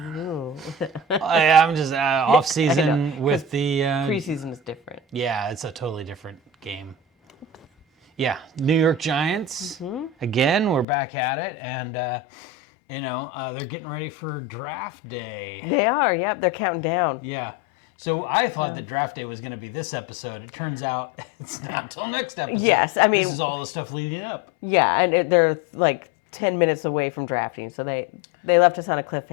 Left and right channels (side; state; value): right; drops out; at 10.9 s